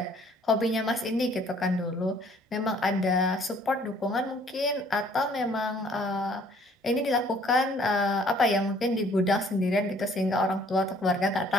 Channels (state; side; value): normal; both; correlation 0.58